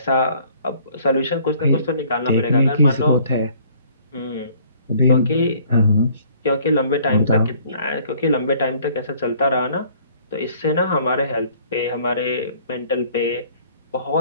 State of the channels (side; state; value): both; inverted; correlation -0.57